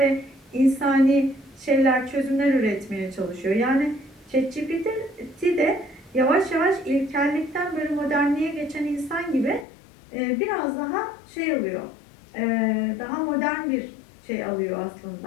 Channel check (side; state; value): right; drops out; at 9.7 s